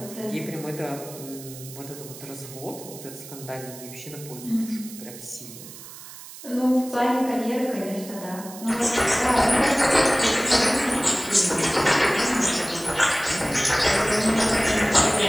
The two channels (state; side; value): noise; right; hiss, 15 dB below the sound